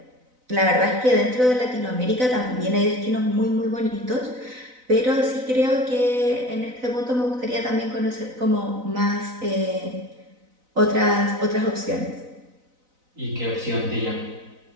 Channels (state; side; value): late; left; 4.0 ms